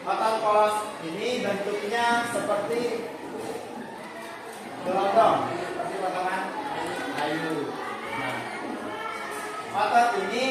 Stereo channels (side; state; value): both; identical; correlation 1.00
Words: otot polos ini bentuknya seperti gelondong, seperti potongan kayu. Nah, otot